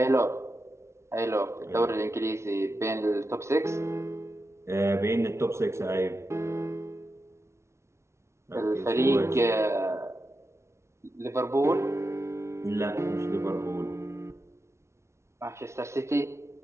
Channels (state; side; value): late; left; 0.13 ms